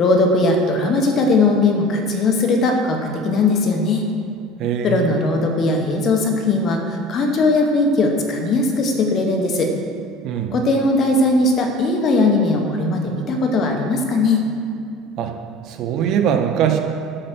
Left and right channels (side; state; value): both; normal; correlation 0.42